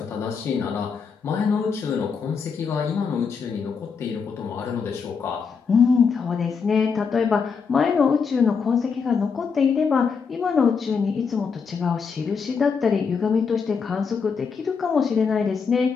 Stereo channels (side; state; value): right; quieter; 5.7 dB